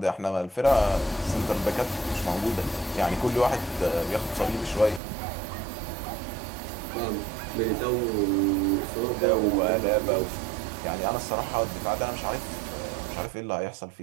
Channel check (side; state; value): left; drops out; at 5.0 s